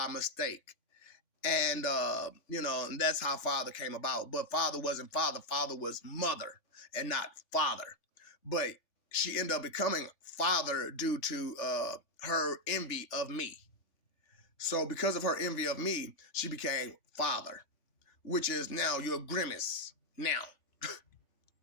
mistake. And, you know, and that's how Father came about. But Father wasn't Father. Father was Mother and not Father. But she ended up becoming Father due to her envy of me. So because of her envy of me, she became Father, which is now your grimace now.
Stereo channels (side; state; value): right; late; 3.3 ms